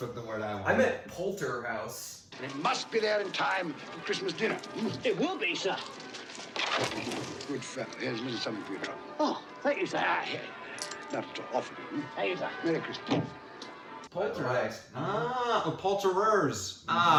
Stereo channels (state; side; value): identical; both; correlation 1.00